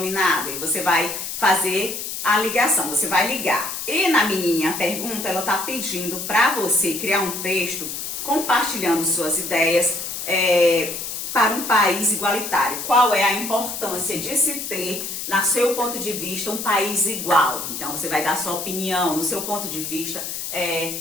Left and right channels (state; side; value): noise; left; hiss, 6 dB below the sound